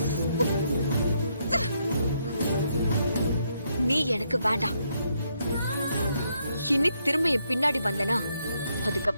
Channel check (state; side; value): inverted; both; correlation -0.76